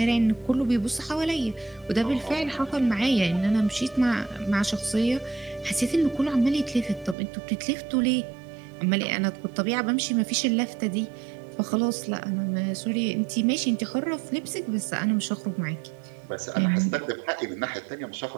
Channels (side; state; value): left; drops out; at 7.2 s